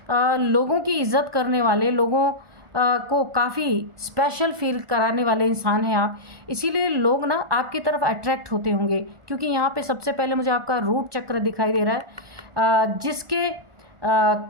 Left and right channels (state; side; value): late; left; 1.4 ms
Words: लोगों की इज़्ज़त करने वाले, लोगों को काफ़ी स्पेशल फील कराने वाले इंसान हैं आप। इसीलिए लोग ना आपकी तरफ अट्रैक्ट होते होंगे, क्योंकि यहाँ पे सबसे पहले मुझे आपका रूट चक्र दिखाई दे रहा है, जिसके